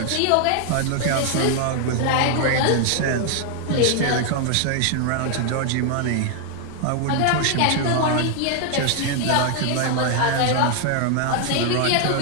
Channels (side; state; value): both; different; correlation 0.00